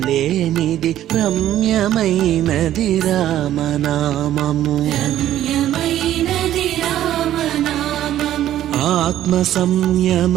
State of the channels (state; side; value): quieter; left; 12.4 dB